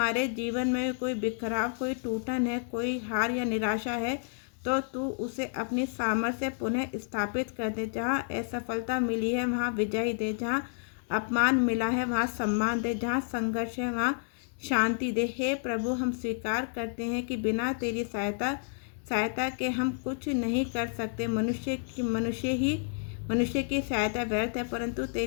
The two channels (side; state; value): right; silent; 58 dB below the other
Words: जीवन में कोई बिखराव, कोई टूटन है, कोई हार या निराशा है तो तू उसे अपनी सामर्थ्य से पुनः स्थापित कर दे। जहाँ असफलता मिली है वहाँ विजय दे, जहाँ अपमान मिला है वहाँ सम्मान दे, जहाँ संघर्ष है वहाँ शांति दे। हे प्रभु, हम स्वीकार करते हैं कि बिना तेरी सहायता के हम कुछ नहीं कर सकते। मनुष्य की सहायता व्यर्थ है, परंतु